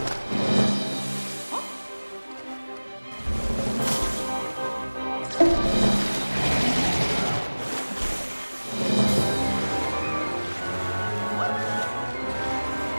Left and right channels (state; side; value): inverted; both; correlation -1.00